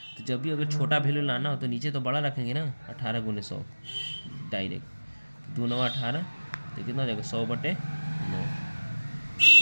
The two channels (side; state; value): both; inverted; correlation -1.00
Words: तो जब भी अगर छोटा वैल्यू लाना हो तो नीचे तो बड़ा रखेंगे ना, 18 गुने 100 डायरेक्ट, 2 9 18, तो कितना हो जाएगा 100/9,